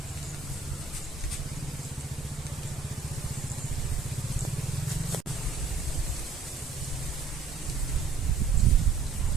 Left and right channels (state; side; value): quieter; left; 4.6 dB